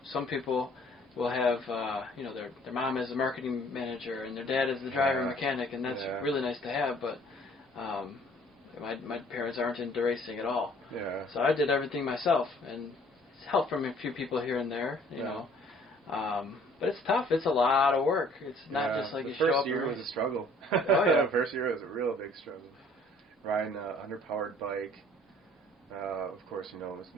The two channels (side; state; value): both; normal; correlation 0.57